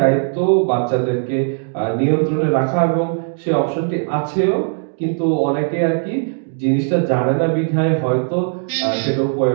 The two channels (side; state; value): left; silent; digital silence